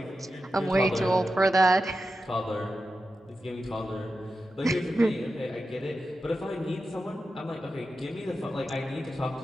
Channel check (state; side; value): normal; both; correlation 0.91